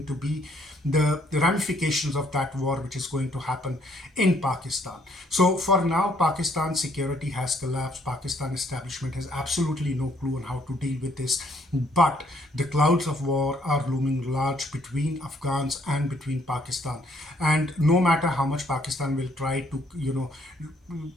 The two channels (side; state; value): both; normal; correlation 0.67